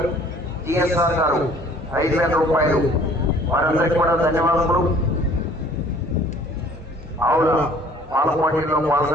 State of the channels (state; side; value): normal; both; correlation 0.54